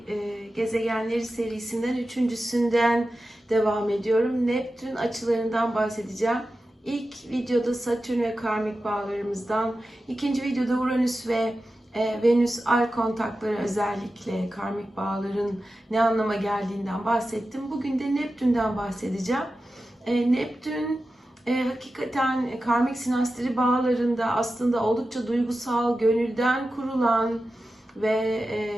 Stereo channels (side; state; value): both; normal; correlation 0.93